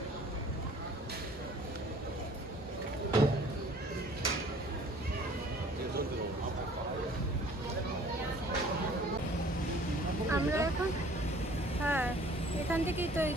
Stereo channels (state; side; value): normal; both; correlation 0.52